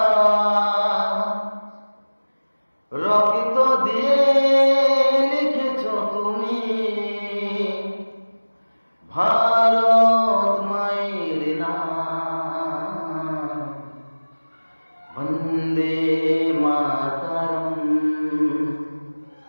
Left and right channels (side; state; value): both; inverted; correlation -1.00